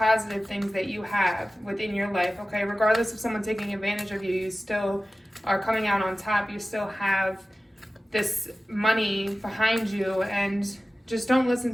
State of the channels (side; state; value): both; normal; correlation 0.96